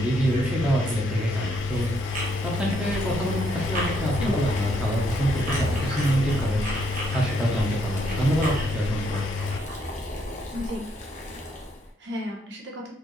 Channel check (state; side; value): normal; both; correlation 0.73